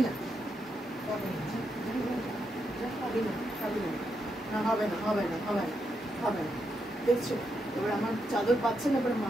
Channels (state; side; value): normal; both; correlation 0.82